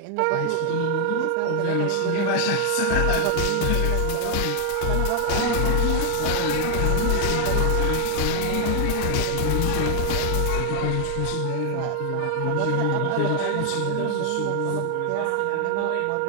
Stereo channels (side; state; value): both; different; correlation 0.00